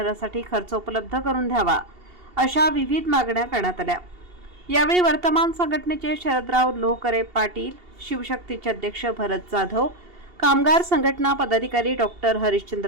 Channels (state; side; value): late; left; 2.8 ms